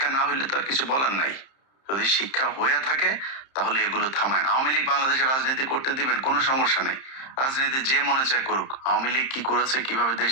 না হইলে তো আর কিছু বলার নাই। যদি শিক্ষা হয়ে থাকে তাহলে এগুলো থামায়। আওয়ামী লীগ বাংলাদেশে রাজনীতি করতে দিবেন, কোনো সমস্যা নেই, রাজনীতি যে মনে চায় করুক। আওয়ামী লীগ কি করেছে, কিভাবে দেশ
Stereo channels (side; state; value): right; late; 30 ms